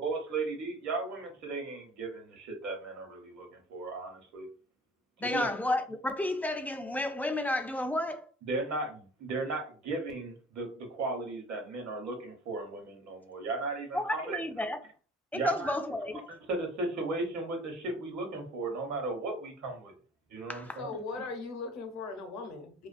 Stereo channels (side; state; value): both; normal; correlation 0.49